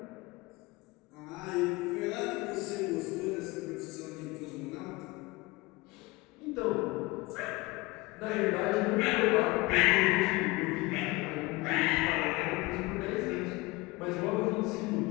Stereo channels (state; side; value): quieter; right; 22.7 dB